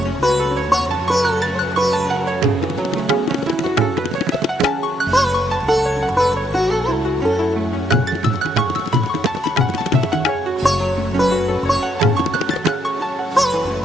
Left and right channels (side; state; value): both; normal; correlation 0.75